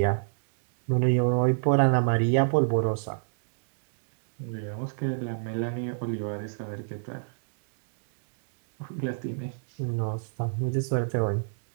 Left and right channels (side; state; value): left; silent; digital silence